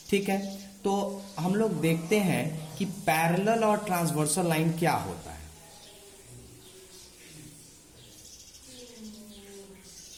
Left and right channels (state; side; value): identical; both; correlation 1.00